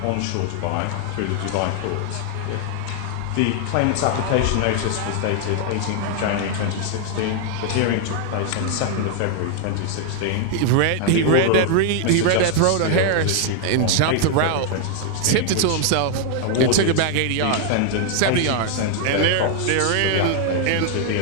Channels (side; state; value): both; different; correlation 0.00